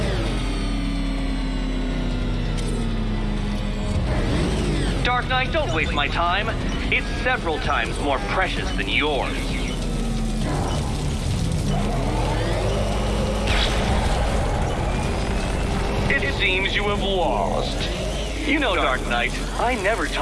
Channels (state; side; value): identical; both; correlation 1.00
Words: Dark Knight, don't waste my time. It's several times more precious than yours. It seems you have lost. You know, Dark Knight, I never